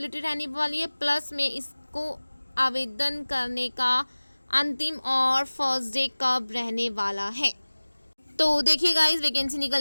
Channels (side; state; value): both; inverted; correlation -1.00